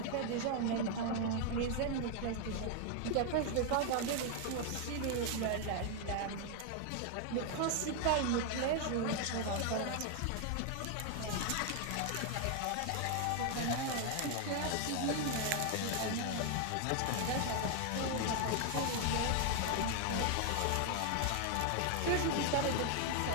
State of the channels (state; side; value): different; both; correlation 0.00